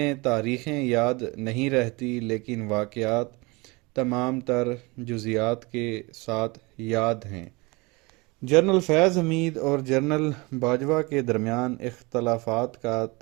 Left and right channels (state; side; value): quieter; left; 25.6 dB